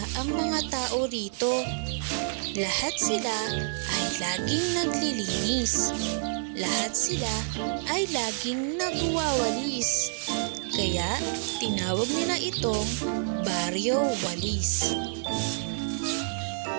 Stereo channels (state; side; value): silent; left; 59 dB below the other